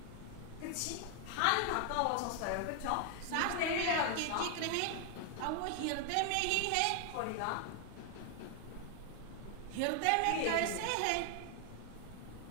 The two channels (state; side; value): different; both; correlation 0.00